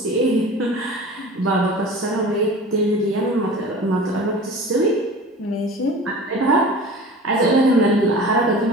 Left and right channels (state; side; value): normal; both; correlation 0.38